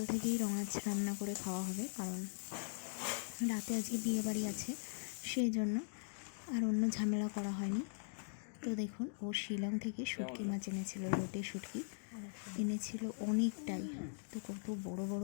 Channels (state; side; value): silent; right; digital silence